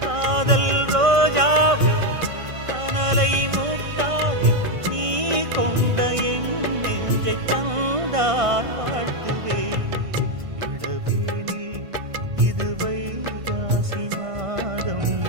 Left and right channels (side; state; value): left; late; 1.5 ms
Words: காதல் ரோஜாவே கனலை மூட்டாதே, நீ கொண்ட என் நெஞ்சை தந்தால் வாழ்த்துவேன். இளவேனில் இது வைகாசி மாதம்,